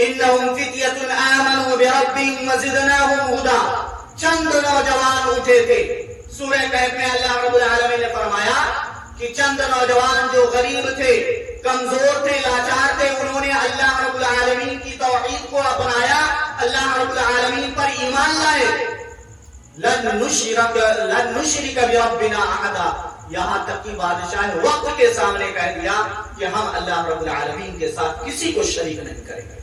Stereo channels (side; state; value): both; identical; correlation 1.00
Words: فتیۃ آمنوا بربہم وزدناہم ھدی. چند نوجوان اٹھے تھے. سورہ کہف میں اللہ رب العالمین نے فرمایا کہ چند نوجوان جو غریب تھے، کمزور تھے، لاچار تھے، انہوں نے اللہ رب العالمین کی توحید کو اپنایا، اللہ رب العالمین پر ایمان لائے. لن نشرک بربنا احدا. یہاں تک کہ بادشاہ وقت کے سامنے کہہ دیا کہ ہم اللہ رب العالمین کے ساتھ کسی کو شریک نہیں کریں گے.